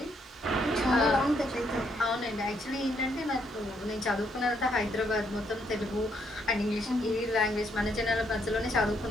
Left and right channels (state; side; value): normal; both; correlation 0.73